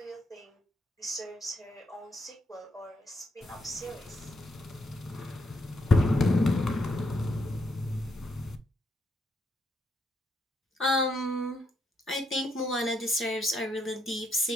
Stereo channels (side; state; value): both; normal; correlation 0.77